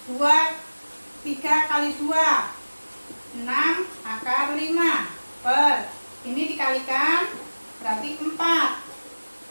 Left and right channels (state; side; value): inverted; both; correlation -1.00